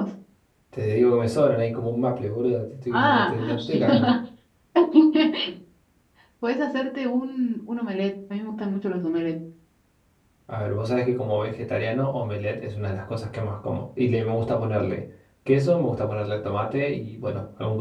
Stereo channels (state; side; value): identical; both; correlation 1.00